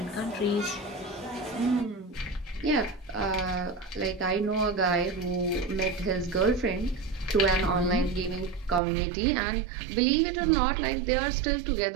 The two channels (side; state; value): left; drops out; at 8.8 s